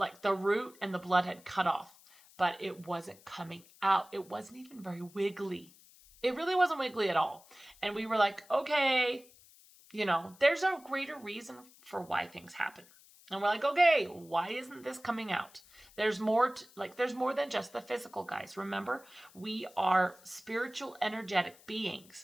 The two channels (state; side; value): noise; left; hiss, 25 dB below the sound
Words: the root and the blood had cut off, but it wasn't coming out. It wasn't even very wiggly. It really wasn't wiggly at all. And we were like, okay, there's a greater reason for why things happen. And we're like, okay, why isn't this coming out? There's more, there's more than just the physical, guys. Remember, we are spiritual, energetic